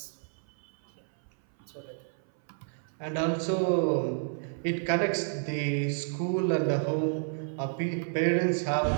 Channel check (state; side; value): silent; left; 58 dB below the other